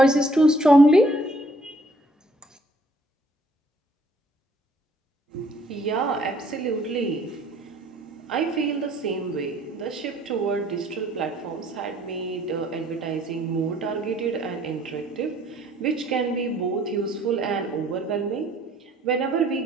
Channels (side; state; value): both; normal; correlation 0.61